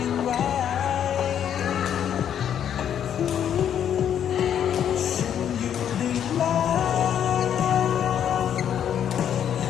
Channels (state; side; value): quieter; right; 9.3 dB